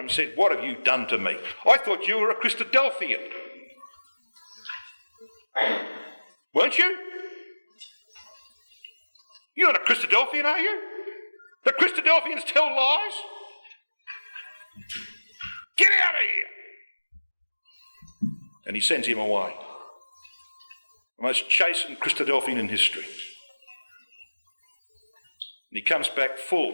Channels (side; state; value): both; inverted; correlation -1.00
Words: and said, what have you done to me? I thought you were a Christadelphian. Weren't you? You're not a Christadelphian, are you? The Christadelphians tell lies? Get out of here! And he sends him away. The most chastened Christadelphian in history. And he comes back